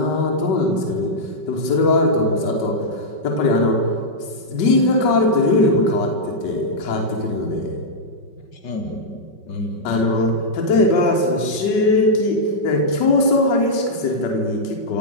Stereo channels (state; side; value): late; right; 5.3 ms